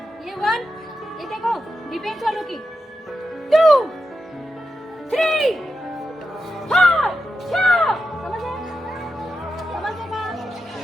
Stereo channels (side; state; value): both; normal; correlation 0.89